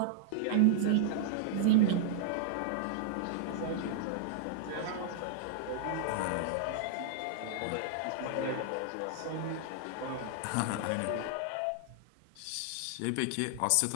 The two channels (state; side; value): different; both; correlation -0.01